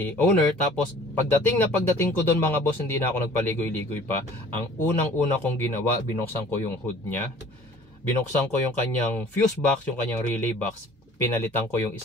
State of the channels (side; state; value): both; normal; correlation 0.50